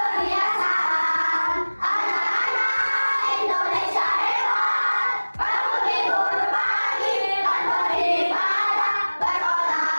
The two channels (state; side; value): inverted; both; correlation -1.00